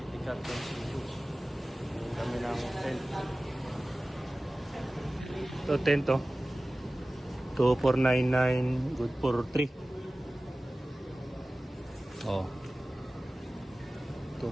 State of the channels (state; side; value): normal; both; correlation 0.97